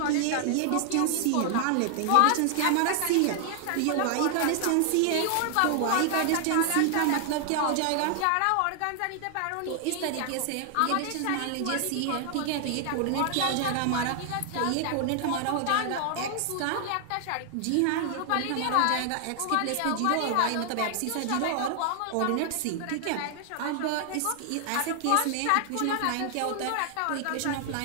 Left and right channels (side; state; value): both; different; correlation 0.00